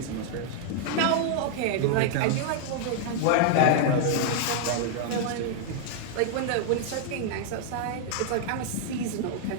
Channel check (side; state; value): both; different; correlation -0.01